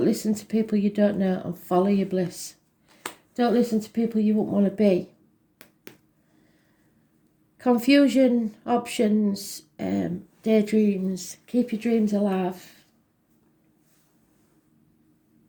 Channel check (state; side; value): identical; both; correlation 1.00